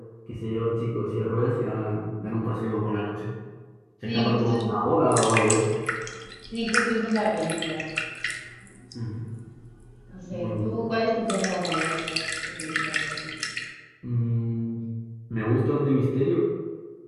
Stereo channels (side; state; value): both; identical; correlation 1.00